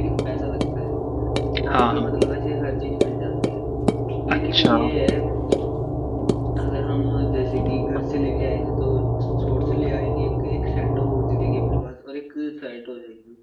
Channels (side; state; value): both; identical; correlation 1.00